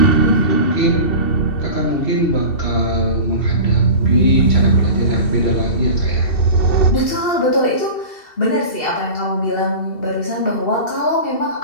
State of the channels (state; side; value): late; right; 2.7 ms